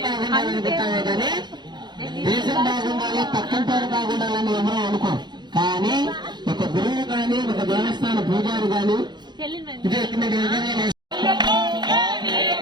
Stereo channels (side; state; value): left; late; 0.21 ms